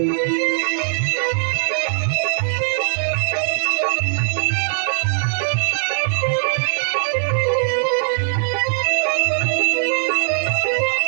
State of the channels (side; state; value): left; silent; digital silence